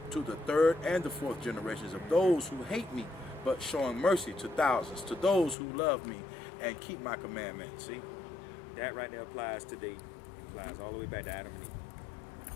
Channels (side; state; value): right; drops out; at 5.6 s